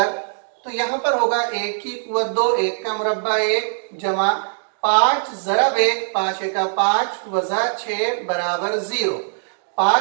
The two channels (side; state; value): left; silent; digital silence